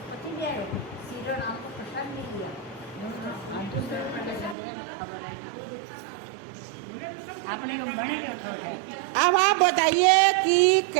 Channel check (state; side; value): drops out; left; at 4.5 s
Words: अब आप बताइए कि